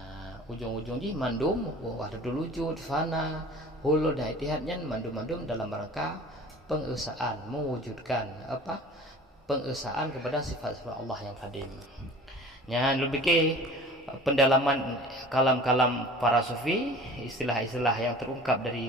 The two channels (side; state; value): both; normal; correlation 0.43